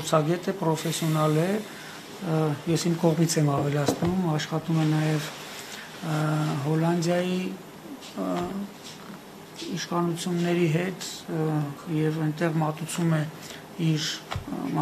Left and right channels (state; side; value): identical; both; correlation 1.00